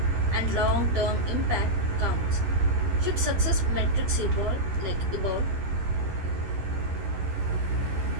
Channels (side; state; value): left; late; 10 ms